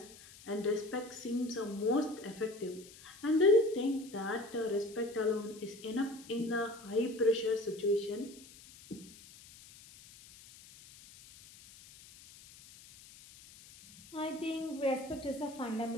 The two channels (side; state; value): left; noise; hiss, 20 dB below the sound